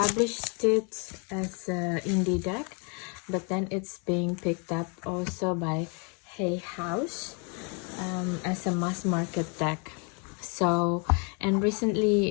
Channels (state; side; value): quieter; right; 36.0 dB